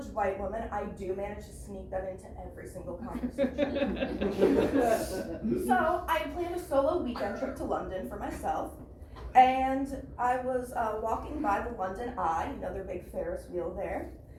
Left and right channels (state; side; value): identical; both; correlation 1.00